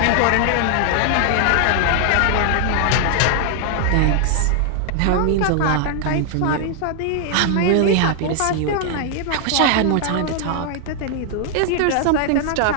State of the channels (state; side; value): different; both; correlation 0.00